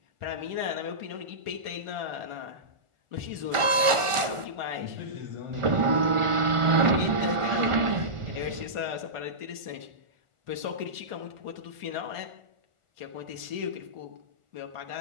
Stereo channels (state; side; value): late; left; 1.4 ms